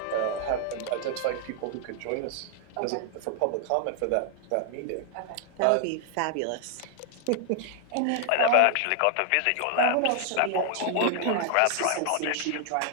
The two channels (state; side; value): different; both; correlation 0.00